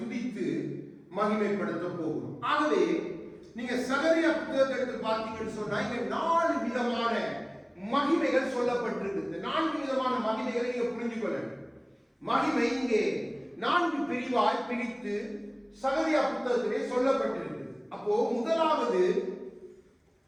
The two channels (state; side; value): identical; both; correlation 1.00